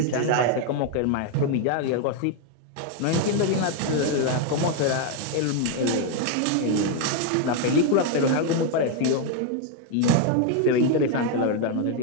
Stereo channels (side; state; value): both; different; correlation 0.01